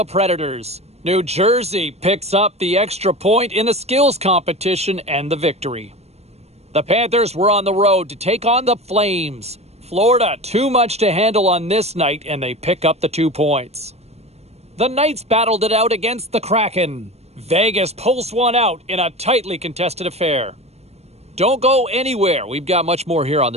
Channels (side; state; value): left; late; 0.31 ms